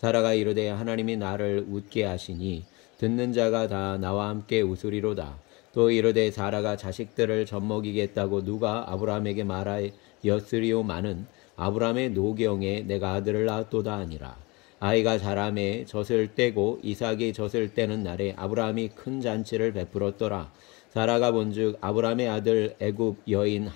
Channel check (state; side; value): quieter; right; 25.4 dB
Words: 이르되 하나님이 나를 웃게 하시니 듣는 자가 다 나와 함께 웃으리로다. 또 이르되 사라가 자식들을 젖먹이겠다고 누가 아브라함에게 말하였으리오마는 아브라함의 노경에 내가 아들을 낳았도다 하니라. 아이가 자라매 젖을 떼고 이삭이 젖을 떼는 날에 아브라함이 큰 잔치를 베풀었더라. 사라가 본즉 아브라함의 아들 애굽 여인